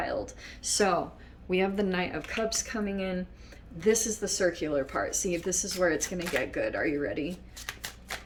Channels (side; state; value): both; identical; correlation 1.00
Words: So we have the Knight of Cups coming in. This is the circular part. See, this is where it's going to get good. Are you ready?